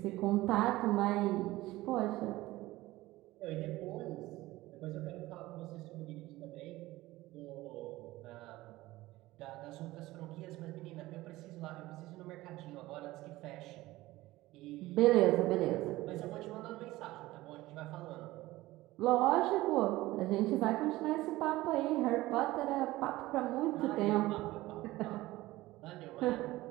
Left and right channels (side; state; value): left; quieter; 18.0 dB